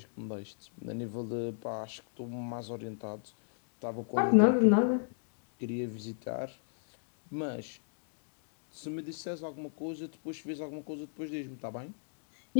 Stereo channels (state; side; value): silent; right; digital silence